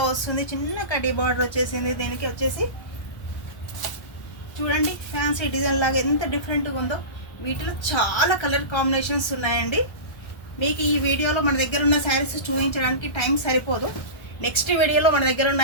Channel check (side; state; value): right; late; 1.3 ms